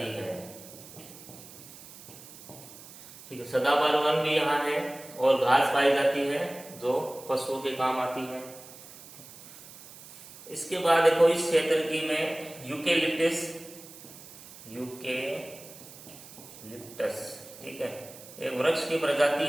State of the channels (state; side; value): noise; right; hiss, 18 dB below the sound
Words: है, ठीक है। सदाबहार वन भी यहाँ है और घास पाई जाती है जो पशुओं के काम आती है। इसके बाद देखो इस क्षेत्र की में यूकेलिप्टस, ठीक है, एक वृक्ष की प्रजाति